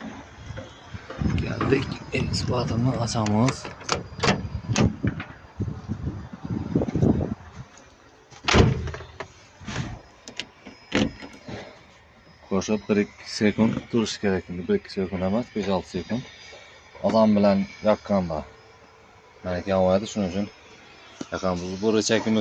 Geldik, ekskavatorni açamiz. Qo'shib 1-2 sekund turish kerak. 1-2 sekund emas, 5-6 sekund. Odam bilan yoqqanda meniki yonmaydi, shuning uchun yoqamiz. Bu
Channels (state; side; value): identical; both; correlation 1.00